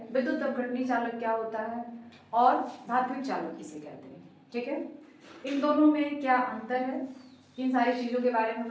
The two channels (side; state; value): both; identical; correlation 1.00